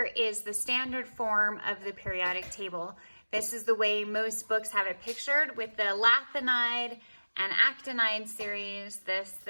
is the standard form of the periodic table. This is the way most books have it pictured, with the lanthanide and actinide series. This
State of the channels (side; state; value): both; inverted; correlation -1.00